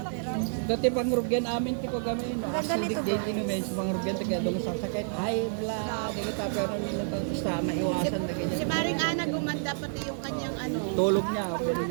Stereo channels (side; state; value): left; silent; 58 dB below the other